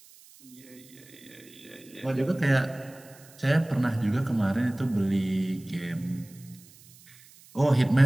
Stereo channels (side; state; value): right; noise; hiss, 24 dB below the sound